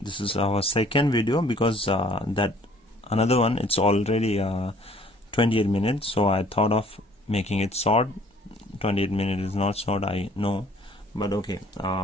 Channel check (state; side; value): normal; both; correlation 0.57